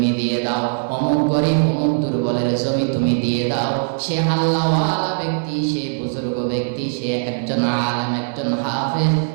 দিয়ে দাও, অমুক গরিব অমুক দুর্বলের জমি তুমি দিয়ে দাও। সে আল্লাহওয়ালা ব্যক্তি, সে বুজুর্গ ব্যক্তি, সে একজন আলেম, একজন হাফেজ,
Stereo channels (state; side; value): silent; left; digital silence